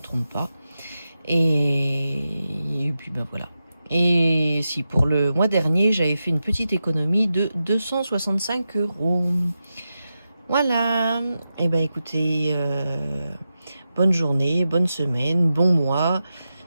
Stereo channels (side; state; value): both; inverted; correlation -0.90